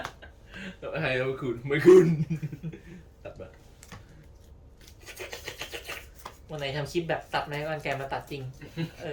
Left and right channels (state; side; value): identical; both; correlation 1.00